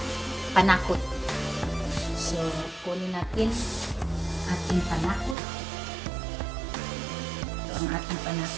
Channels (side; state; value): left; drops out; at 5.4 s